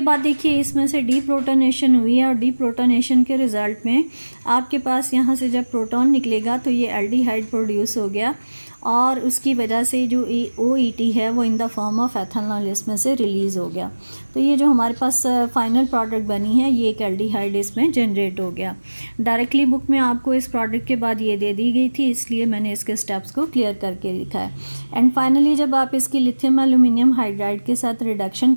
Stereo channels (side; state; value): both; inverted; correlation -1.00